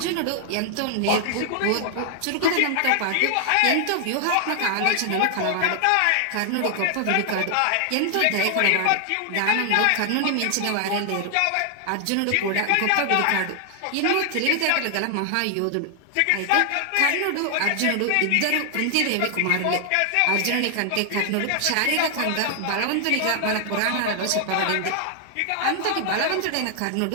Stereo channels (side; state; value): both; different; correlation 0.00